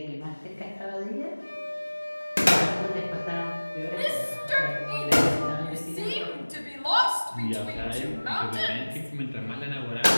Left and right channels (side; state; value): both; inverted; correlation -1.00